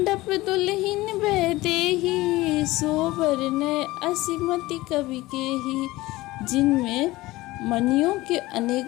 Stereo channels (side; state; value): right; quieter; 19.0 dB